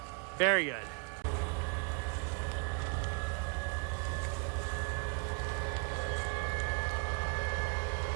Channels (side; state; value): left; quieter; 36.4 dB